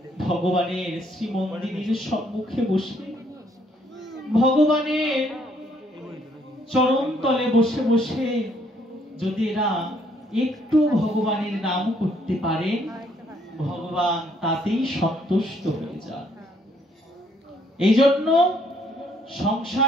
ভগবানের শ্রীমন্দিরের সম্মুখে বসে, ভগবানের চরণ তলে বসে বসে যদি এরা একটু ভগবানের নাম করতে পারে, ভগবান তাতেই সন্তুষ্ট হয়ে যান। এই জন্য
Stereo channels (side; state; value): both; normal; correlation 0.67